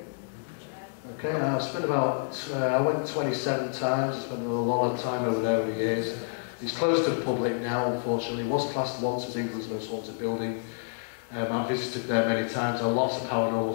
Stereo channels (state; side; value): silent; right; digital silence